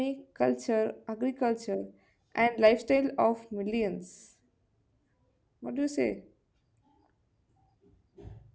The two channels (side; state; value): both; identical; correlation 1.00